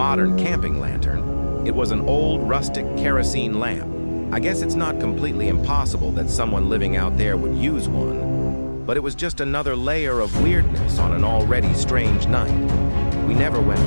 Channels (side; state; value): both; inverted; correlation -1.00